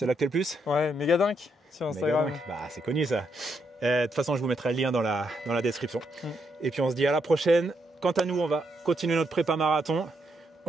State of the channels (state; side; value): normal; both; correlation 0.78